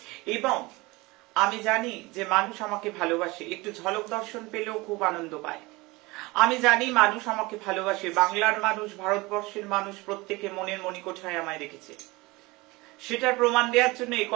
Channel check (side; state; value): left; quieter; 22.9 dB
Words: এবং আমি জানি যে মানুষ আমাকে ভালোবাসে, একটু ঝলক দর্শন পেলেও খুব আনন্দ পায়। আমি জানি মানুষ আমাকে ভালোবাসে, বাংলার মানুষ, ভারতবর্ষের মানুষ, প্রত্যেকে মনের মণিকোঠায় আমায় রেখেছে। সেটার প্রমাণ দেওয়ার জন্য এই